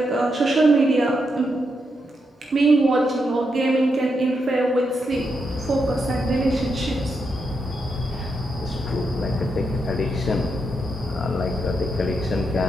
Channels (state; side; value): normal; both; correlation 0.83